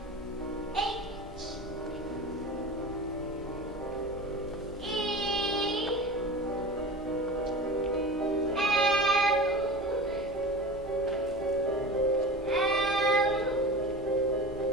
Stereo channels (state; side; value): normal; both; correlation 0.33